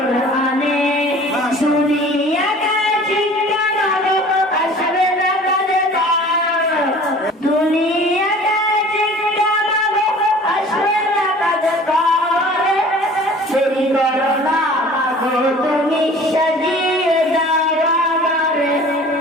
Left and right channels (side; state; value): both; normal; correlation 0.46